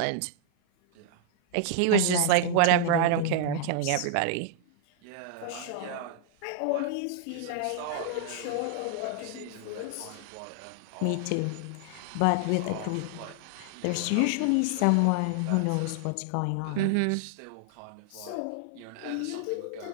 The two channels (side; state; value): both; different; correlation 0.00